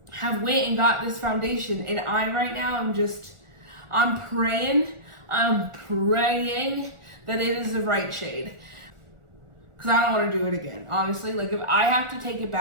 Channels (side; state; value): left; late; 1.4 ms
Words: have went and got this foundation, and I right now I'm praying that it is the right shade, because I don't want to do it again, honestly. Like, if I have to take it